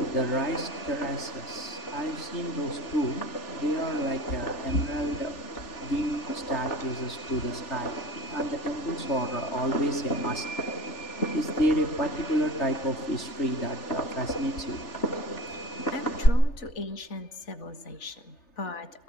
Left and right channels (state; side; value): late; right; 3.4 ms